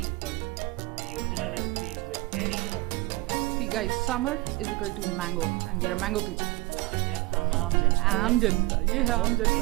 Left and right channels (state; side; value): quieter; left; 22.1 dB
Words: but the original recipe is with cherry or raw mango. See guys, summer is equal to mango and we are mango people. हम आम जनता आम जनता, ये है आम जनता. ये